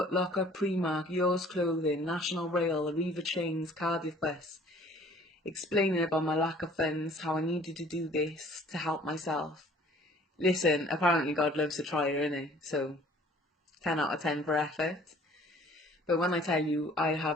Locker, Primark, Yours Clothing, National Rail, Arriva Trains, Cardiff Bus. Explaining about my lack of funds, how I needed to do this to help myself. Listen, apparently God loves a trier, innit? So 10 out of 10 for effort. But when I tell you I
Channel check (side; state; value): both; normal; correlation 0.53